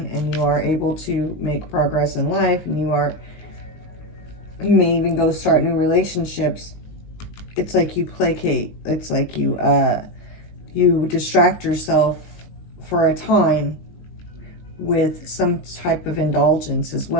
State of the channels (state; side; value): late; right; 19 ms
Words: and you are able to make progress in life, and you may even go start new relationships. It's like you placate. It's like you distract yourself for a time with some type of indulgence as